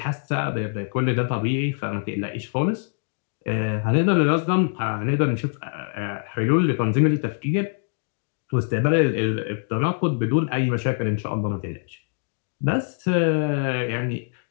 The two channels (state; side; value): silent; right; 60 dB below the other